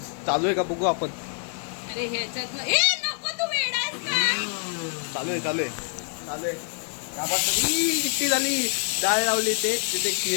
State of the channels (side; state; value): right; silent; 56 dB below the other